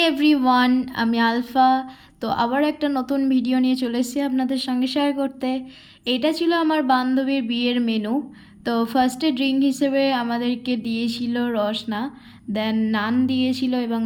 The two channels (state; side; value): identical; both; correlation 1.00